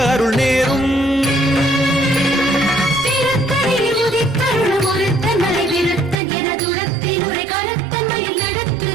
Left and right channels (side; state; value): left; drops out; at 6.2 s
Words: அருள் நேரும். திருத்தணியில் உதித்தருளும் ஒருத்தன் மலை விருத்தன் என துரத்தில் உரை கருத்தன் மயில் நடத்து